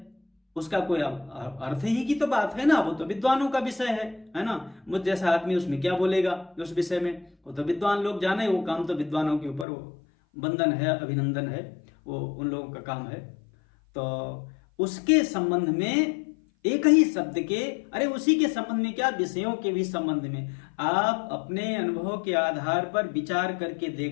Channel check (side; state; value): right; drops out; at 9.7 s